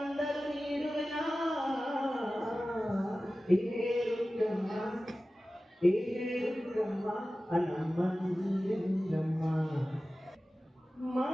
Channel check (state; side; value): normal; both; correlation 0.96